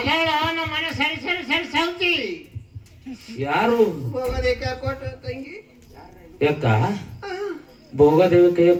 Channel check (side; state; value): both; identical; correlation 1.00